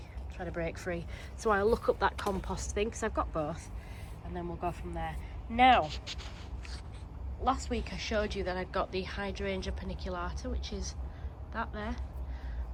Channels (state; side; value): identical; both; correlation 1.00